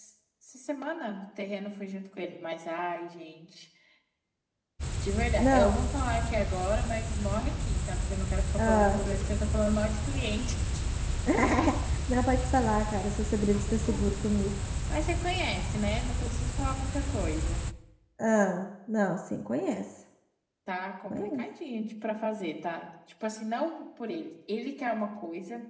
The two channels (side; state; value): both; identical; correlation 1.00